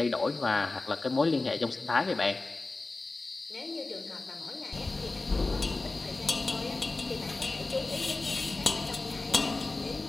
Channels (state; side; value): quieter; right; 3.3 dB